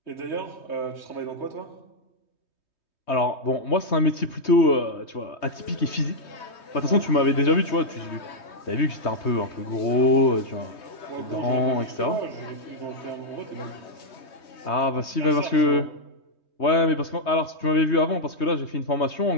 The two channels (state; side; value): late; right; 3.2 ms